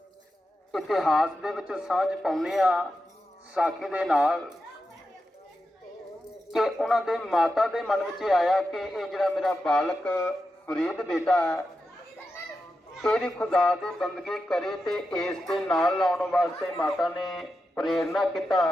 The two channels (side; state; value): both; normal; correlation 0.89